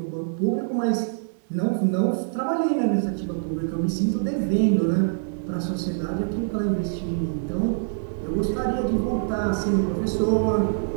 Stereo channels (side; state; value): left; silent; 62 dB below the other